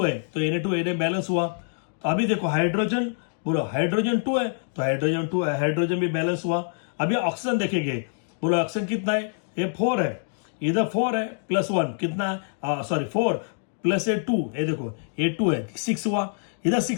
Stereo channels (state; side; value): silent; right; digital silence